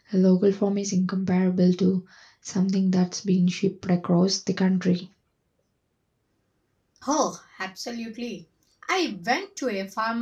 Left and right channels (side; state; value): both; identical; correlation 1.00